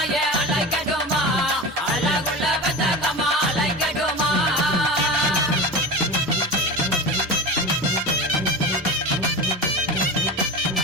அலைக்கட்டுமா அழகுள்ள பெத்தாக்கம்மா அலைக்கட்டுமா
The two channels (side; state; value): both; normal; correlation 0.29